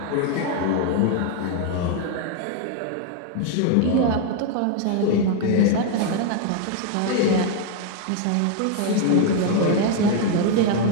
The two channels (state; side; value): different; both; correlation 0.00